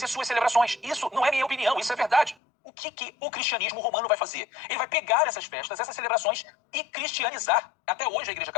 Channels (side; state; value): right; drops out; at 2.4 s